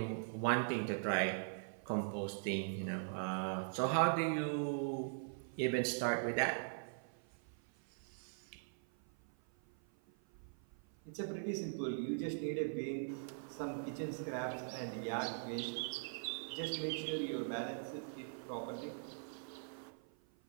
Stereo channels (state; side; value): silent; left; 50 dB below the other